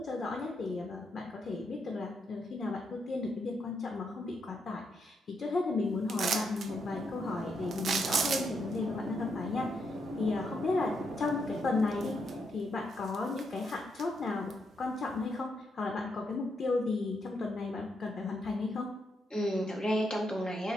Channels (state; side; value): normal; both; correlation 0.79